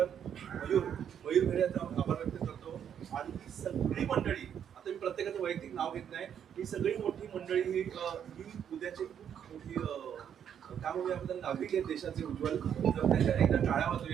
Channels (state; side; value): quieter; left; 8.8 dB